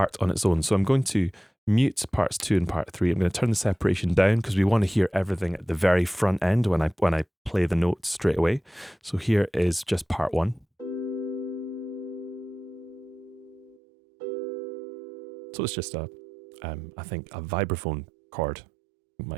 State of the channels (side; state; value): left; drops out; at 13.8 s